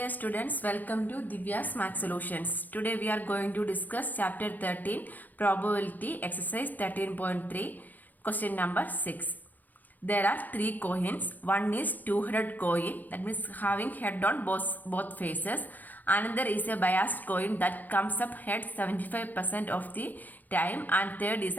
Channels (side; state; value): right; late; 0.084 ms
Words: students, welcome to Divya's Math Solutions. Today we are going to discuss chapter 13, Probability, exercise 13.3, question number 6. There are three coins. One is 200 coin, that means having head on both faces. Another is a biased coin that comes up head 75% of the time, and third is